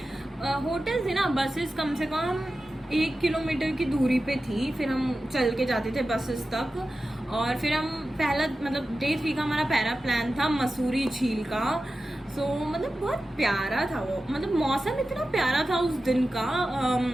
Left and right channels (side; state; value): both; normal; correlation 0.93